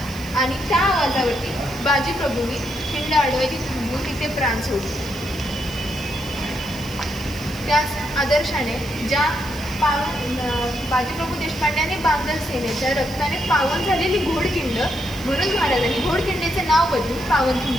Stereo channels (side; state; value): right; noise; hiss, 18 dB below the sound